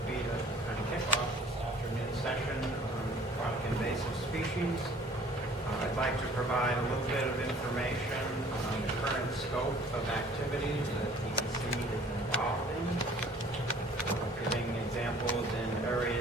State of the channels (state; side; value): normal; both; correlation 0.53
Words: be to kind of kick off this afternoon session on aquatic invasive species. I'd like to provide a little bit of information on the current scope of activities that DEC is involved in. Giving examples in